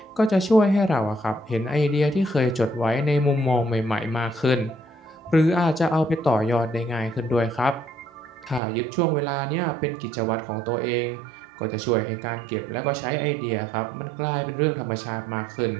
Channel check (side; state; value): left; drops out; at 8.6 s